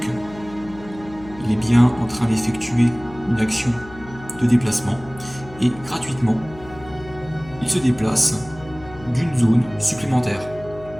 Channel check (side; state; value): left; noise; hum, 18 dB below the sound